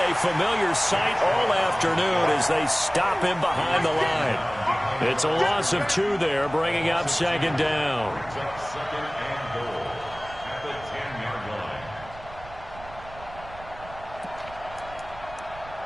familiar sight all afternoon as they stop him behind the line. It's a loss of 2 there, bringing up second down. Second and goal at the 10-yard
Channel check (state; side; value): noise; right; rumble, 18 dB below the sound